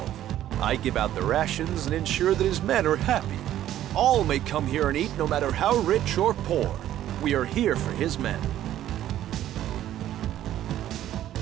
I give out the rations and ensure that his men are happy. All may come here and eat no matter how rich or poor. We are here for his men.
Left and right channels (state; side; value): quieter; left; 12.4 dB